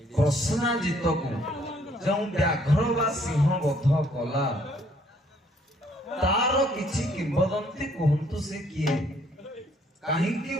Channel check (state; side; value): normal; both; correlation 0.64